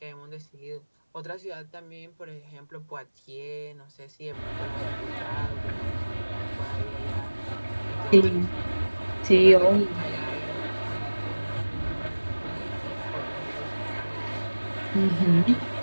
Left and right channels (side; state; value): both; inverted; correlation -1.00